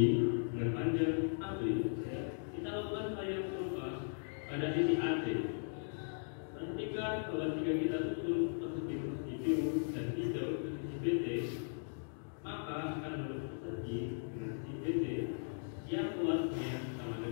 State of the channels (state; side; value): silent; right; digital silence